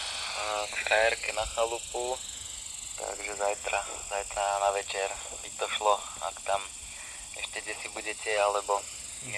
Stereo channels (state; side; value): identical; both; correlation 1.00